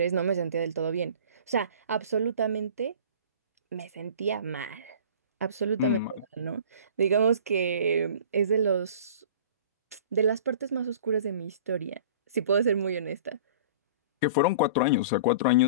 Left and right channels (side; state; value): both; inverted; correlation -0.43